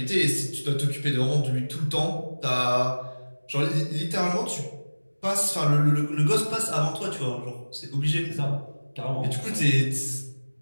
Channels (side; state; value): both; inverted; correlation -1.00